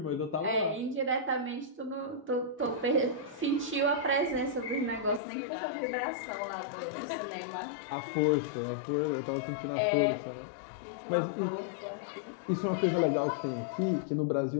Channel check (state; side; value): drops out; right; at 5.2 s